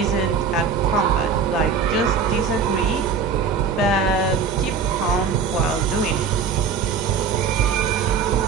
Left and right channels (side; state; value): left; quieter; 5.7 dB